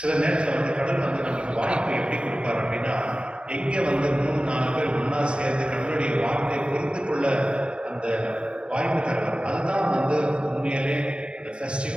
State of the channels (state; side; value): late; left; 0.056 ms